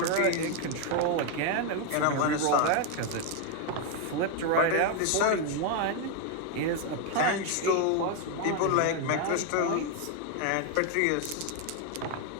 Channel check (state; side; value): different; both; correlation 0.01